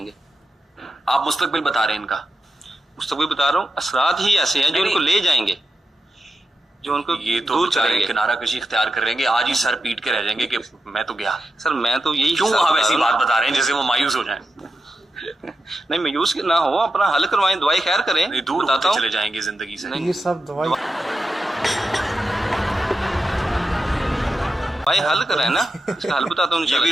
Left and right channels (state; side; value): normal; both; correlation 0.89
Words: आप मुस्तकबिल बता रहे हैं इनका? मुस्तकबिल बता रहा हूँ, असरात ही ऐसे हैं जो उनको ले जाएंगे, जो उनको ये तो दूर बेचारे करेंगे। किनारा कशी इख्तियार कर रहेंगे, आज ही सर पीट के रह जाएंगे कि मैं तो गया। सर मैं तो यही क्यों हिसाब आप बता ऐसी रहा हूँ। बात बता रहे हैं जैसे वो मायूस हो जाएं? नहीं, मायूस ना हो, अपना हल करवाएं, दवाई खैर करें। नहीं, दूर बताता होते हूँ। चले जाएंगे जिंदगी से। ये सब दवाई भाई हल करें ना, इसका हल बताता हूँ। ये